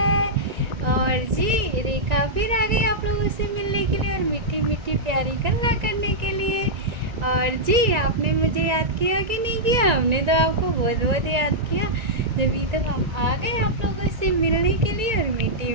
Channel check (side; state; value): left; late; 1.9 ms